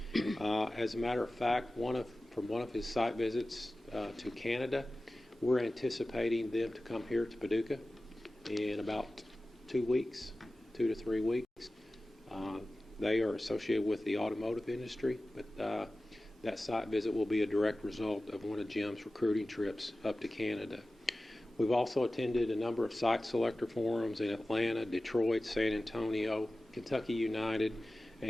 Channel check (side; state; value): both; normal; correlation 0.96